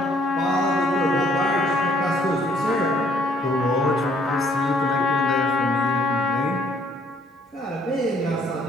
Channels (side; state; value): both; normal; correlation 0.63